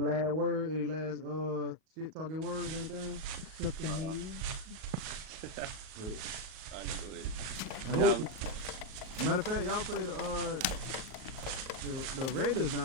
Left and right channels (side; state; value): left; late; 38 ms